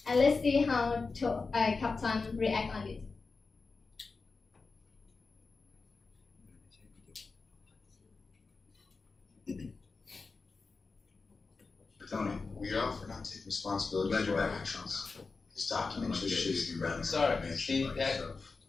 Captain react on it. Tony, we offer not take responsibility for our actions. This document just shifts the ground. Sorry, Steve, that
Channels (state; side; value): quieter; right; 4.3 dB